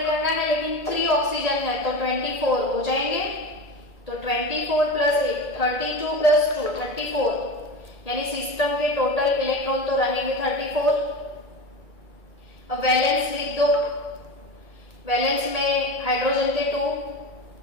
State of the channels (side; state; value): right; late; 1.8 ms